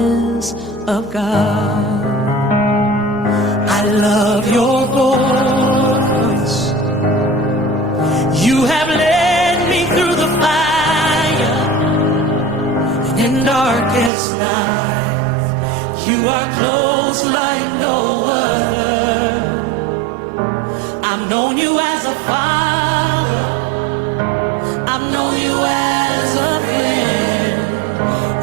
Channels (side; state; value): left; drops out; at 14.1 s